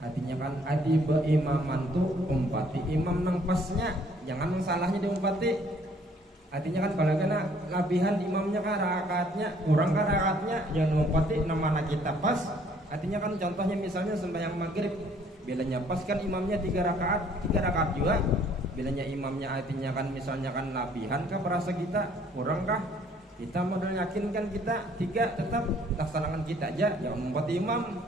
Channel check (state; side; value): normal; both; correlation 0.60